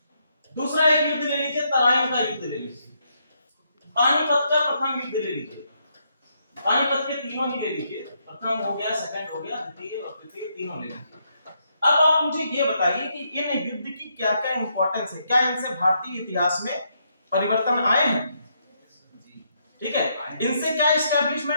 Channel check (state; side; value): inverted; both; correlation -0.76